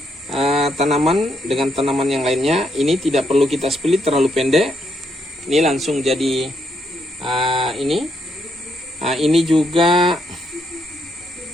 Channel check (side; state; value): both; normal; correlation 0.76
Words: tanaman dengan tanaman yang lainnya. Ini tidak perlu kita split terlalu pendek. Ini langsung jadi ini. Ini juga